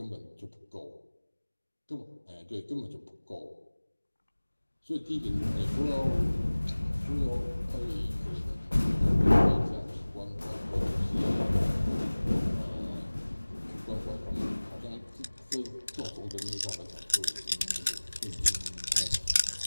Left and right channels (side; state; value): both; inverted; correlation -1.00